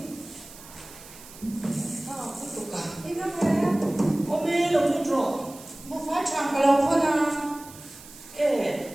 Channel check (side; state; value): right; noise; hiss, 18 dB below the sound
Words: sao không tục cả Ini kan saya ôm mê lòng nó trọ mau fai tham kalau kau nak